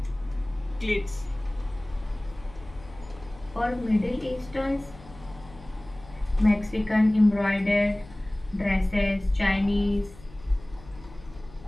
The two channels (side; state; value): left; noise; hum, 20 dB below the sound